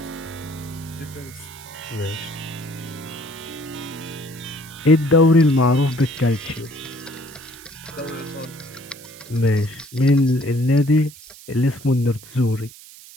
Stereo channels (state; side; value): noise; right; hiss, 19 dB below the sound